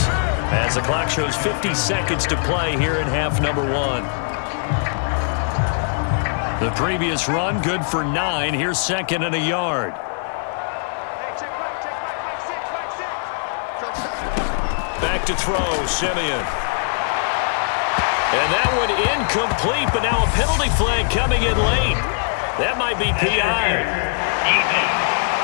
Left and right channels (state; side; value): silent; right; digital silence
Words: as the clock shows 50 seconds to play here in half number 1. The previous run, good for 9. Here's 2nd and a yard. Hey, check back, 6. Back to throw, Simeon. And that one incomplete, but now a penalty flag coming in late. That might be PI.